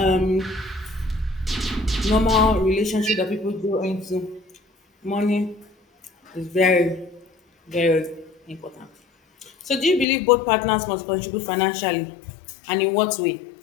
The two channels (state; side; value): drops out; right; at 10.1 s